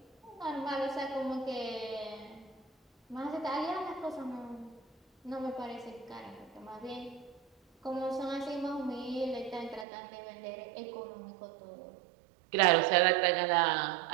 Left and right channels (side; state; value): left; drops out; at 9.9 s